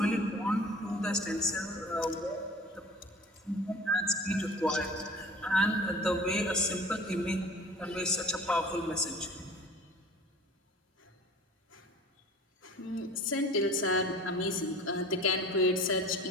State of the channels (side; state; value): both; normal; correlation 0.43